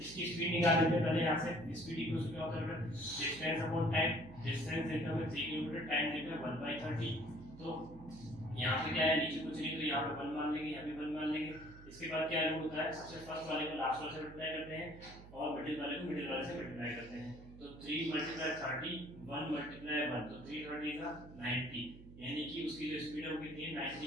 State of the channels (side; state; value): right; noise; hum, 17 dB below the sound